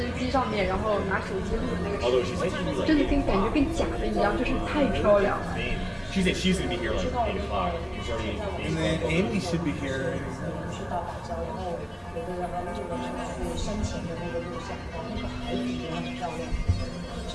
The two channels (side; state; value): both; identical; correlation 1.00